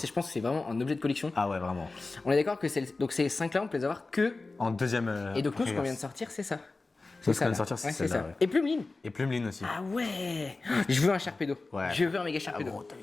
pense que c'est vraiment un objet de collection. Ah ouais, vraiment. On est d'accord que donc ces 5 là, on peut les avoir que. En deuxième. Et donc, nous, ce qu'on reverse. vient de sortir, c'est ça. Ce qu'on vient de là. sortir, c'est Ouais, celle-là, ça. ouais. Et Plumeline. Et Plumeline aussi. Ah ouais. Je veux un Sharpedo. Ouais. Je veux un méga Ah, Sharpedo. gros, t'as vu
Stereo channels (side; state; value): right; quieter; 3.5 dB